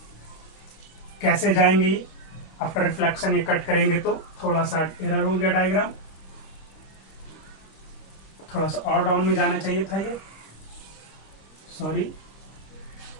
कैसे जाएंगे ये, आफ्टर रिफ्लेक्शन ये कट करेंगे तो थोड़ा सा एरर हो गया डायग्राम, थोड़ा सा और डाउन में जाना चाहिए था, ये सॉरी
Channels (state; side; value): late; right; 26 ms